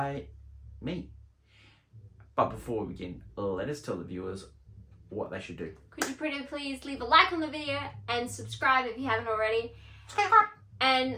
me. But before we begin, let us tell the viewers what they should do. Could you pretty please leave a like on the video and subscribe if you haven't already? And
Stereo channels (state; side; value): identical; both; correlation 1.00